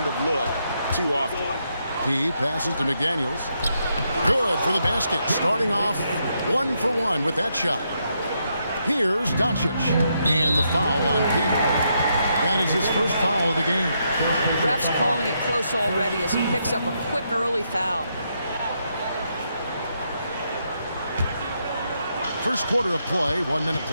of look too often. P passes to McDaniels. Good for the basket. Starting off 1 for 1 with that shot. Here's Doncic. And the foul on P. That is his first foul of the game. Ref's calling it close already as he picks up a quick early foul. First quarter of play, 1 minute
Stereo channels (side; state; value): both; inverted; correlation -0.79